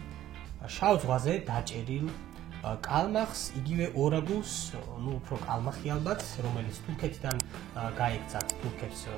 შავ ზღვაზე დაჭერილ კალმახს, იგივე ორაგულს, უფრო კალმახი ალბათ, რომელიც თურქეთიდან გაიქცათ, თურქებს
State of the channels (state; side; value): quieter; left; 13.0 dB